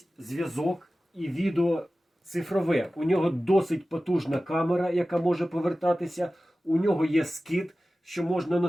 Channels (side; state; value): both; normal; correlation 0.96